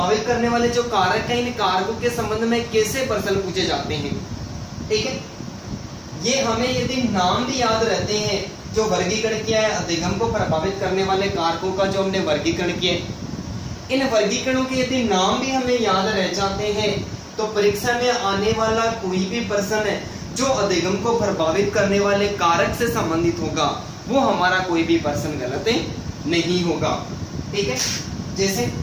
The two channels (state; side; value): identical; both; correlation 1.00